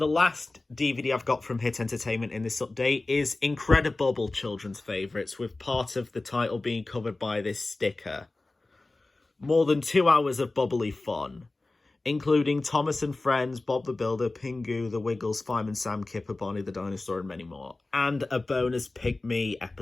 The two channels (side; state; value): right; quieter; 3.1 dB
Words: last DVD I've got from Hit Entertainment in this update, is Incredible Children's Favourites, with part of the title being covered by this sticker. More than 2 hours of bubbly fun, including Thomas and Friends, Bob the Builder, Pingu, The Wiggles, Fireman Sam, Kipper, Barney the Dinosaur, and many more. And a bonus Pick Me